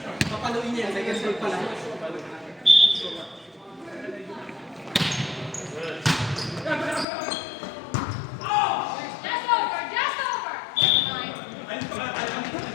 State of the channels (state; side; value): drops out; right; at 7.1 s